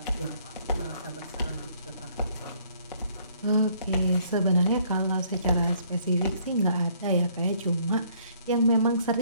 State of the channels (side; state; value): both; inverted; correlation -0.64